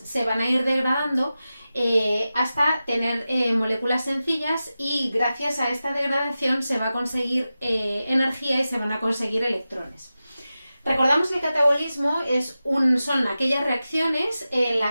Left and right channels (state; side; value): inverted; both; correlation -0.93